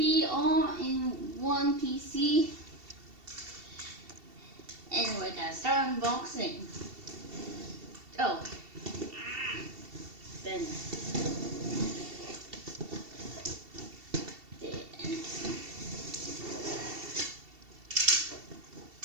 All-in-One PC, and we're gonna start unboxing. Oh, then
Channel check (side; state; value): left; late; 2.7 ms